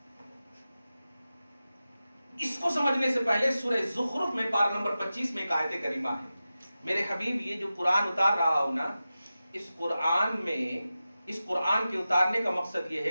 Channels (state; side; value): inverted; both; correlation -0.94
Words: اس کو سمجھنے سے پہلے سورہ زخرف میں پارہ نمبر 25 میں ایک آیت کریمہ ہے۔ میرے حبیب، یہ جو قرآن اتار رہا ہوں نا، اس قرآن میں، اس قرآن کے اتارنے کا مقصد یہ